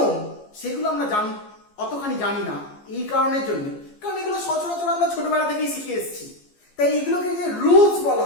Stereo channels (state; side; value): late; right; 14 ms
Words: সেগুলো আমরা অতখানি জানি না, এই কারণের জন্য, কারণ এগুলো সচরাচর আমরা ছোটবেলা থেকেই শিখে এসেছি। তাই এগুলোকে যে রুলস বলা